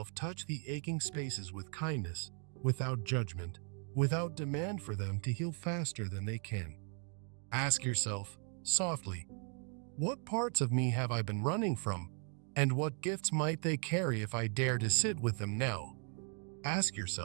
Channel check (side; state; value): left; quieter; 39.8 dB